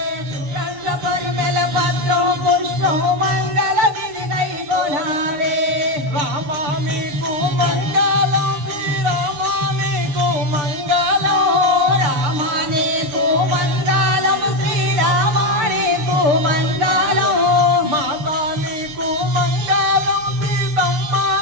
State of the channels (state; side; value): late; left; 6.7 ms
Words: సుగంధ పరిమళ పత్రం పుష్పం మంగళ బిడిగై కోనారే రామా నీకు మంగళం శ్రీరామా నీకు మంగళం రామానేకు మంగళం శ్రీరామానేకు మంగళం మాతా నీకు మంగళం సీతమ్మ